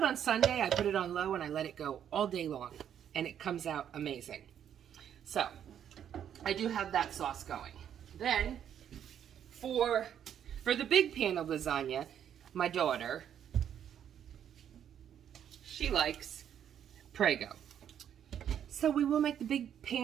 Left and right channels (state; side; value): quieter; left; 9.4 dB